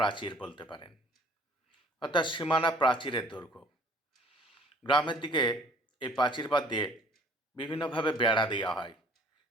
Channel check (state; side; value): normal; both; correlation 0.54